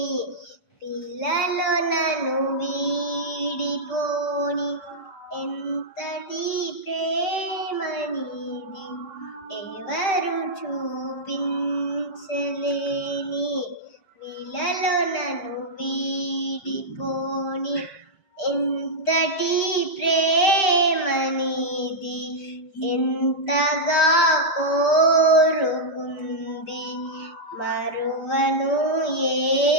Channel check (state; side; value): late; right; 5.2 ms